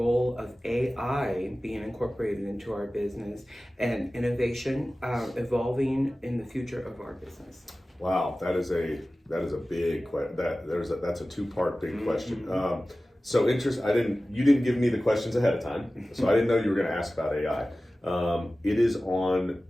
of AI being incorporated into our business and innovation evolving in the future of our business? Wow, that is a big question. That's a two-part big question. So you didn't give me the questions ahead of time, so I didn't know you were going to ask about AI. It is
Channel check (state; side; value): normal; both; correlation 0.96